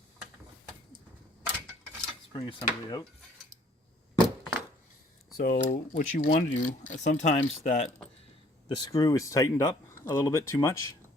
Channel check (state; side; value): normal; both; correlation 0.59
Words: spring assembly out. So what you want to do, sometimes that the screw is tightened up a little bit too much,